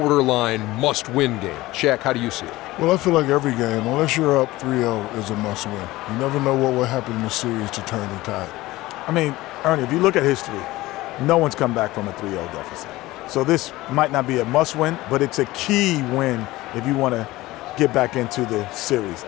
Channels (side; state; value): right; quieter; 18.4 dB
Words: must-win game. Shaq, how do you see it? Well, I feel like every game, unless you're up 3-0, is a must-win. You never know what will happen in the series to turn the tide. I mean, Ernie, if you look at history, no one's come back from a 3-0 deficit. So this might not be a must-win, but it's a key win if you want to get back into the series.